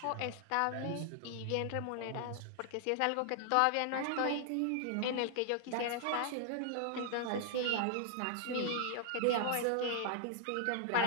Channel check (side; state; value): both; different; correlation 0.00